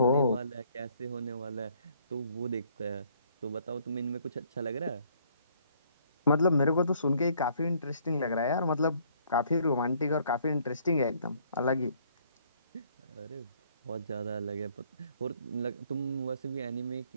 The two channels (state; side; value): inverted; both; correlation -0.63